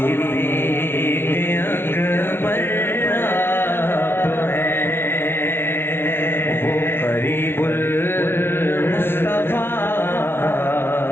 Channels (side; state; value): right; late; 0.11 ms